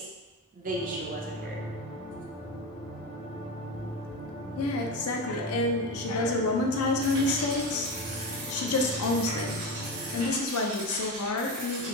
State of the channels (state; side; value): normal; both; correlation 0.21